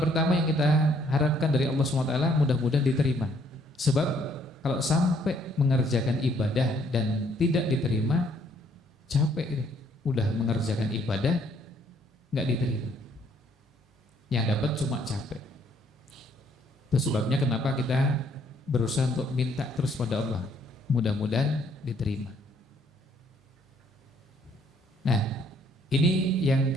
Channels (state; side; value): normal; both; correlation 0.65